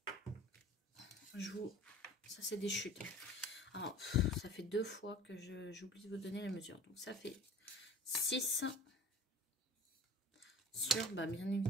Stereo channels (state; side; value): normal; both; correlation 0.43